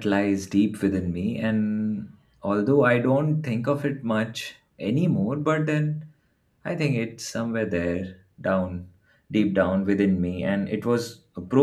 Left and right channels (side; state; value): both; identical; correlation 1.00